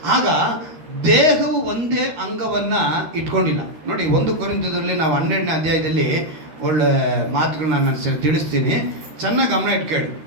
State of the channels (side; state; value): left; late; 13 ms